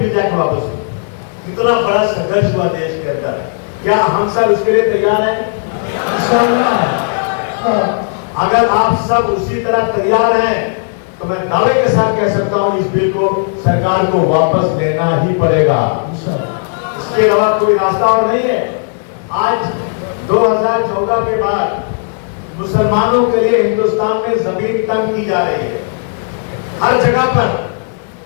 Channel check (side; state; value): right; silent; digital silence